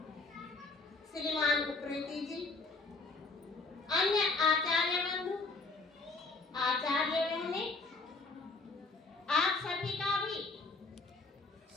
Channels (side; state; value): right; quieter; 3.7 dB